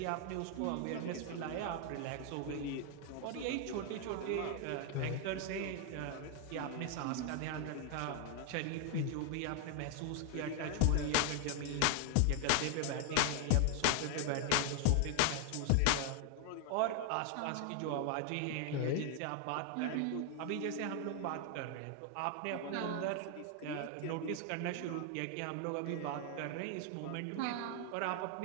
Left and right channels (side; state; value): both; different; correlation 0.00